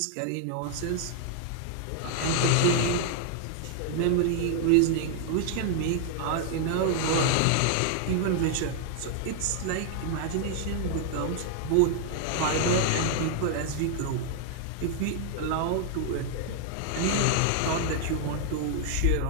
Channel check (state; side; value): different; both; correlation 0.00